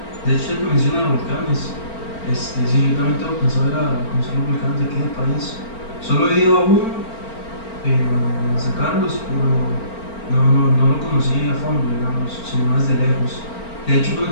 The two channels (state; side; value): late; right; 4.4 ms